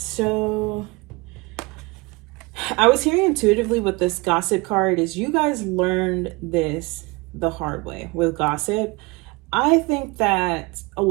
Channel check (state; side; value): quieter; left; 25.3 dB